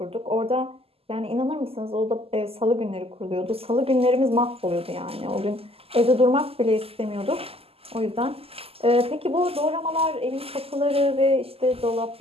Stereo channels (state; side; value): late; left; 0.28 ms